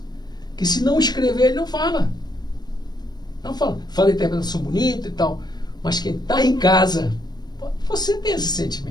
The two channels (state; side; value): late; right; 0.20 ms